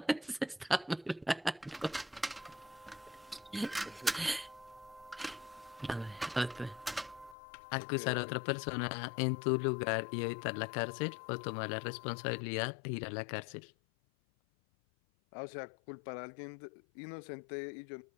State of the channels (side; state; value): right; drops out; at 7.4 s